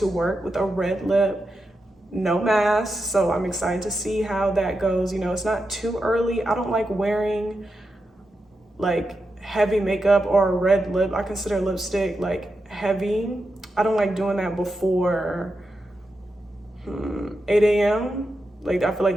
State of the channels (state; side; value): normal; both; correlation 0.87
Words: work with a red lip, no mask. So I'm excited to see how that goes. You know, it's not too early. I don't like wearing like heavy makeup or a red lip. I consider lipstick like heavy. I don't like doing that before 8 a.m. Like, I feel like